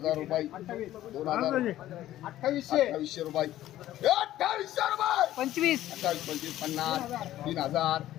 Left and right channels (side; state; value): right; quieter; 13.7 dB